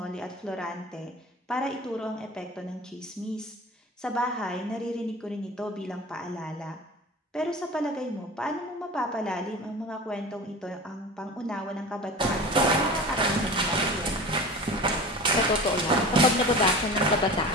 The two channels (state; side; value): normal; both; correlation 0.34